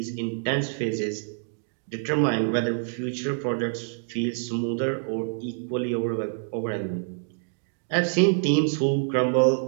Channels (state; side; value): silent; left; digital silence